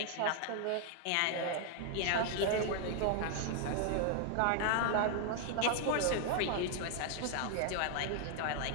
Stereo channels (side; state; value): both; different; correlation 0.00